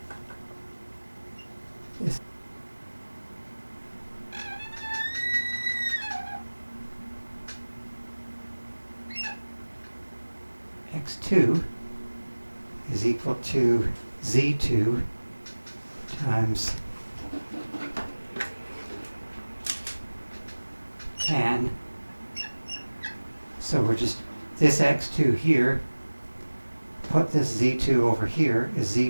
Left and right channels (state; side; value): inverted; both; correlation -1.00